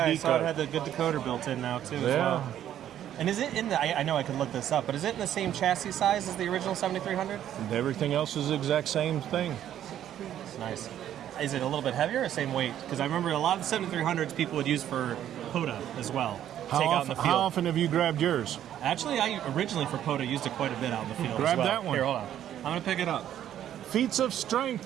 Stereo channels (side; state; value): left; quieter; 11.0 dB